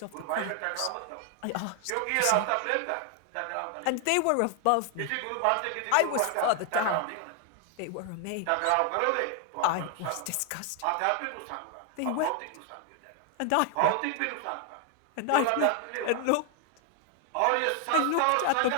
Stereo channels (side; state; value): both; different; correlation 0.00